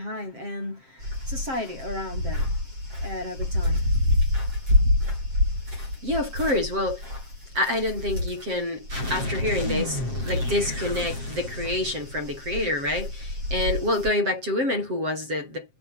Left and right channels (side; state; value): left; late; 7.6 ms